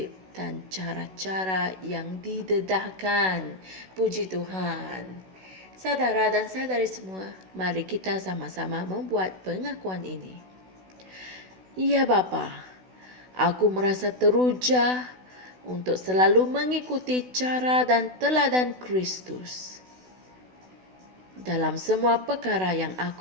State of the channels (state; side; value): late; left; 16 ms